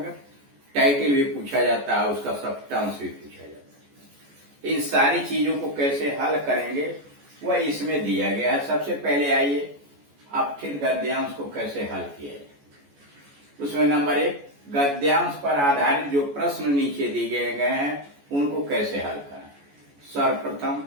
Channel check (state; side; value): late; left; 14 ms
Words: टाइटल भी पूछा जाता है, उसका सब्सटेंस भी पूछा जाता है। इन सारी चीजों को कैसे हल करेंगे वह इसमें दिया गया है। सबसे पहले आइए अपठित गद्यांश को कैसे हल किया जाए। उसमें नंबर 1, गद्यांश पर आधारित जो प्रश्न नीचे दिए गए हैं उनको कैसे हल करें। सर्वप्रथम